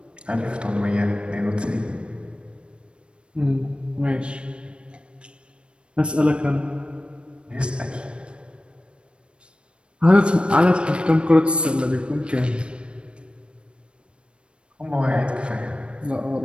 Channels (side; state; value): left; late; 0.057 ms